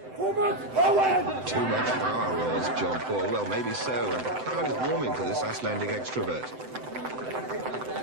Too much power, roars Jean-Paul. Well, maybe so, and the crowd is warming to this Icelandic extrovert.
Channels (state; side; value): late; left; 7.8 ms